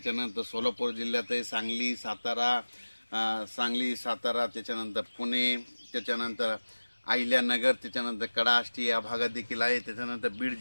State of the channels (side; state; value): both; inverted; correlation -1.00